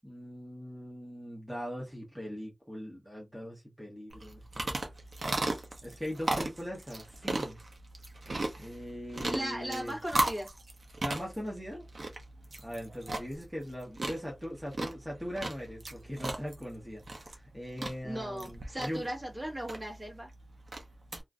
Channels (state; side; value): normal; both; correlation 0.96